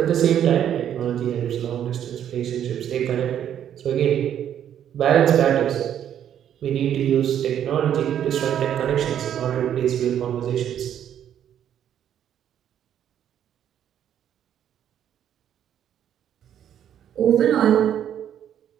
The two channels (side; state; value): left; quieter; 9.9 dB